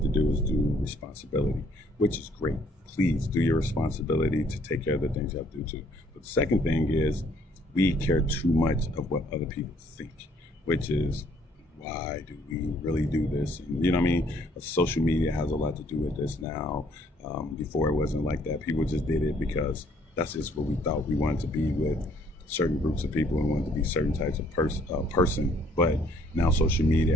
to do is do responsibility, which is great. Please do your responsibility to take care of the things you have to do too. But the second thing is we care too much of what other people think, which is why do we really do this? And, you know what I mean? Social media has a lot to do with this now. Before it wasn't like that. People just did it because that's just what we thought we wanted to be with certain groups of people and wanted to be certain types of person. But now social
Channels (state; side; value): normal; both; correlation 0.64